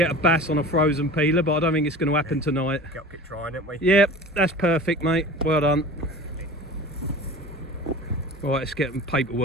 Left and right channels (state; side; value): normal; both; correlation 0.38